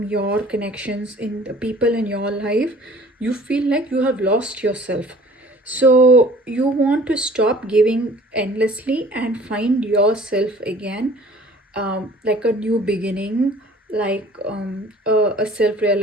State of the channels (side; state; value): both; normal; correlation 0.50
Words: your connections in the people in your life, you feel like you have lost yourself. So you want to stop giving endlessly and find yourself again, like a new beginning, like a